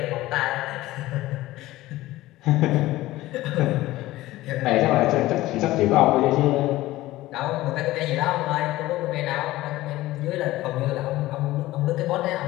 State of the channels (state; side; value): quieter; right; 17.0 dB